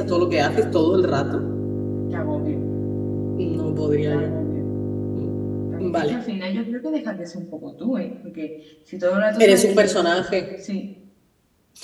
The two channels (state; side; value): identical; both; correlation 1.00